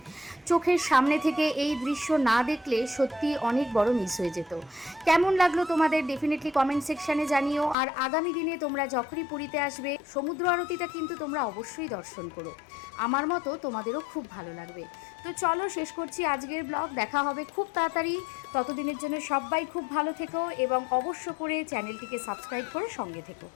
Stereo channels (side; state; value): right; drops out; at 7.8 s